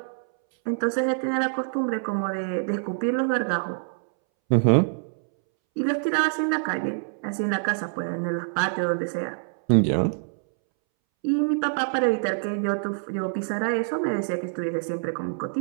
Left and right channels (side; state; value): left; silent; 61 dB below the other